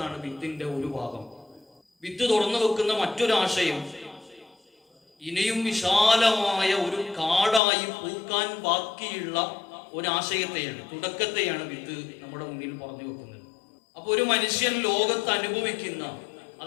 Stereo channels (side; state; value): right; drops out; at 7.6 s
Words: വിത്തിന്റെ ഒരു ഭാഗം. വിത്ത് തുറന്നു വെക്കുന്ന മറ്റൊരാശയം ഇനിയും വിശാലമായ ഒരു കാടായി പൂക്കാൻ ബാക്കിയുള്ള ഒരാശയത്തെയാണ്, തുടക്കത്തെയാണ് വിത്ത് നമ്മുടെ മുന്നിൽ പറഞ്ഞു വെക്കുന്നത്. അപ്പൊ ഒരു മനുഷ്യൻ ലോകത്ത് അനുഭവിക്കുന്ന,